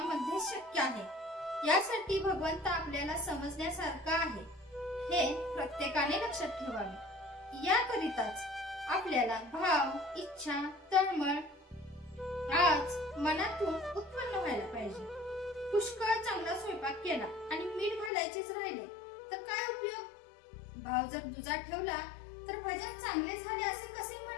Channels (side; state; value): right; drops out; at 18.1 s